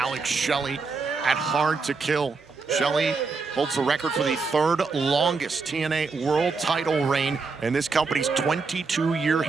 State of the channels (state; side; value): quieter; left; 4.5 dB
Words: Shelley at Hard to Kill. Shelley holds the record for the third longest TNA world title reign in this company's 22-year